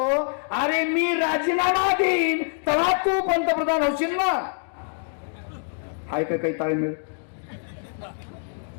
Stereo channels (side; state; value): right; silent; digital silence